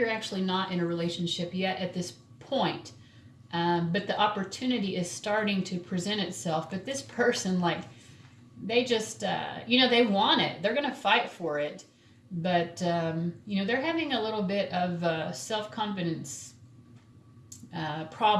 actually not in a relationship yet at this point, but the opportunity is starting to present itself. But this person, like, they just, they want it. They're going to fight for it. But, they're having a little bit of self-confidence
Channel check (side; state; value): both; identical; correlation 1.00